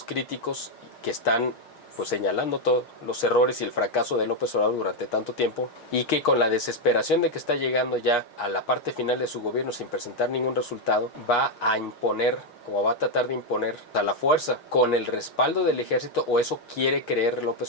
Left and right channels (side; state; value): right; late; 6.4 ms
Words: críticos que están, pues, señalando todos los errores y el fracaso de López Obrador durante tanto tiempo, y que con la desesperación de que está llegando ya a la parte final de su gobierno sin presentar ningún resultado, va a imponer o va a tratar de imponer a la fuerza, con el respaldo del ejército, o eso quiere creer